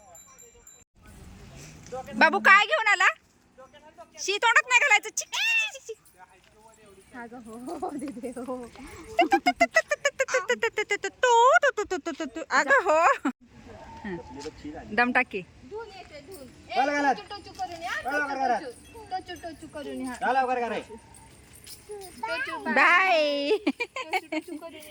बाबू काय घेऊन आला? शी तोंडात नाही घालायचं. चिक, चिक, चिक, चिक. अगं हो. दम टाकी. Bye bye.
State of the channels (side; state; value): both; identical; correlation 1.00